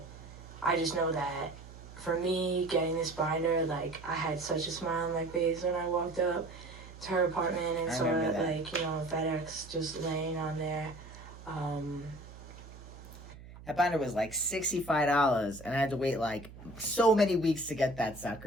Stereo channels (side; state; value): right; noise; hum, 16 dB below the sound